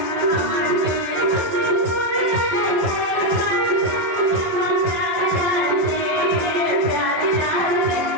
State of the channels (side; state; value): left; late; 12 ms